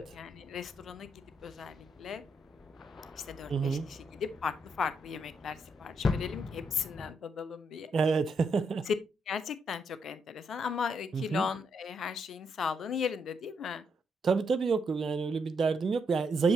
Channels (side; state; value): both; normal; correlation 0.78